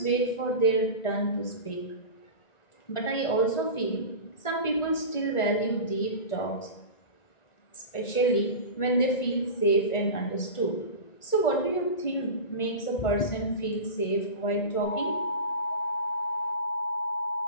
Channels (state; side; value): late; right; 1.4 ms